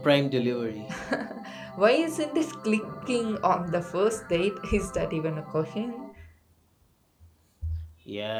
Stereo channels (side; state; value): both; identical; correlation 1.00